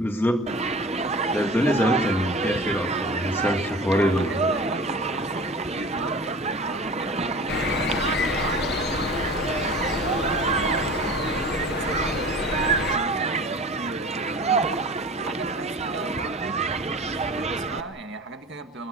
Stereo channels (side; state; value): both; normal; correlation 0.40